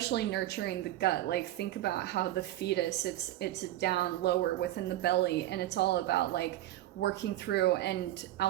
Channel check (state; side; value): quieter; left; 14.5 dB